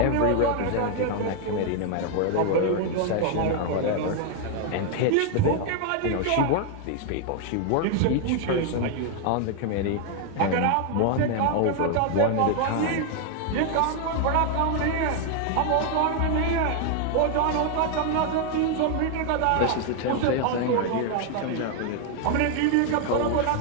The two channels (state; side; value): different; both; correlation 0.00